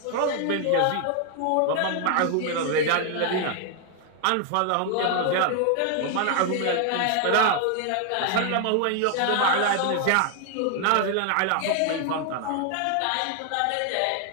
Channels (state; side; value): different; both; correlation 0.00